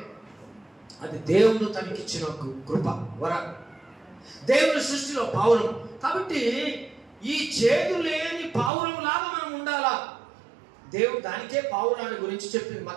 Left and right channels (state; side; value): drops out; left; at 8.7 s